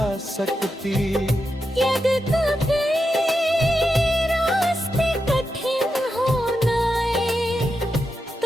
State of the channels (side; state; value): both; normal; correlation 0.87